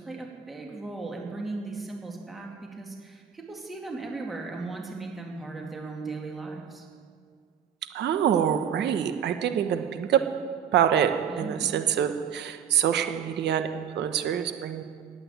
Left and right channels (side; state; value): left; quieter; 8.2 dB